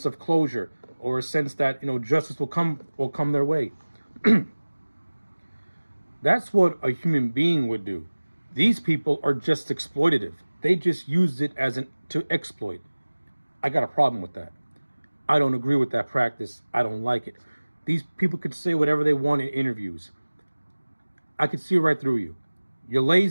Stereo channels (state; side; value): inverted; both; correlation -1.00